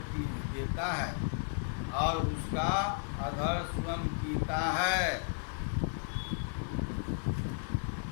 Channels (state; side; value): silent; right; digital silence